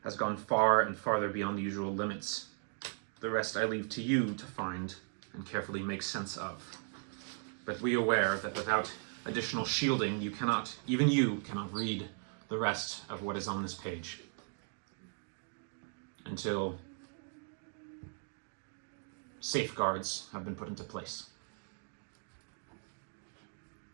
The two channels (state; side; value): silent; left; 53 dB below the other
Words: has gone far and farther beyond the usual limits. The rest I leave to you to find and carefully make sense of. But be aware that without additional shielding, even you cannot read the rest of what is on this page. Until safeguards have been put into place.